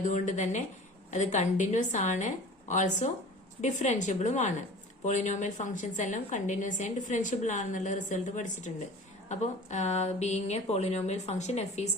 തന്നെ അത് കണ്ടിന്യൂസ് ആണ്, ഓൾസോ ഡിഫറൻഷ്യബിളും ആണ്. പോളിനോമിയൽ ഫംഗ്ഷൻസ് എല്ലാം കണ്ടിന്യൂസ് ആൻഡ് ഡിഫറൻഷ്യബിൾ ആണെന്നുള്ള റിസൾട്ട് പഠിച്ചിട്ടുണ്ട്. അപ്പോൾ being a polynomial function f is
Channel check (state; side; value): normal; both; correlation 0.41